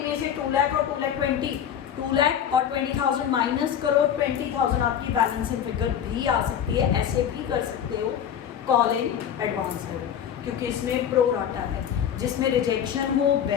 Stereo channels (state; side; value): quieter; right; 9.1 dB